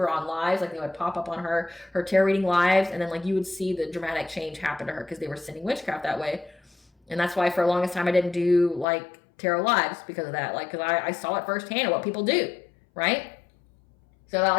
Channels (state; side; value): drops out; right; at 8.8 s